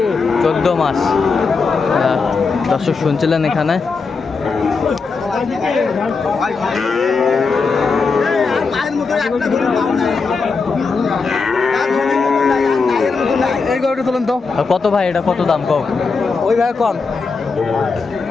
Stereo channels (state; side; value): quieter; right; 4.7 dB